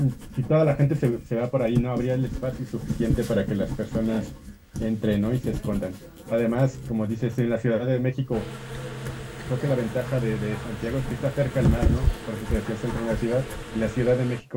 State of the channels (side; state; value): both; identical; correlation 1.00